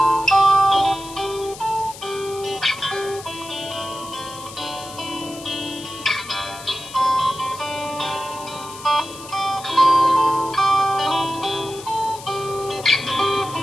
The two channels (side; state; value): left; noise; hiss, 15 dB below the sound